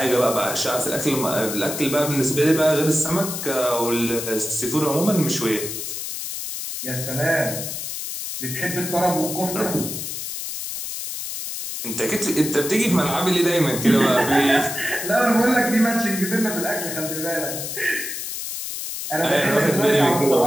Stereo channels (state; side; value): noise; left; hiss, 6 dB below the sound